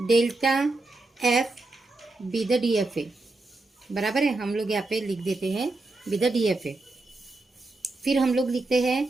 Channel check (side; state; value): left; quieter; 3.1 dB